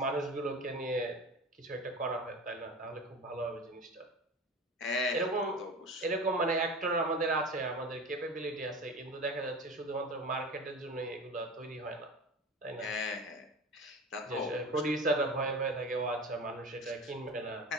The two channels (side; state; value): both; normal; correlation 0.32